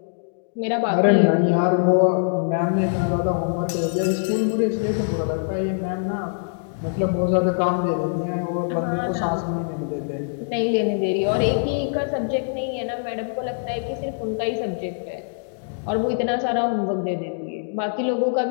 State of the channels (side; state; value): right; silent; digital silence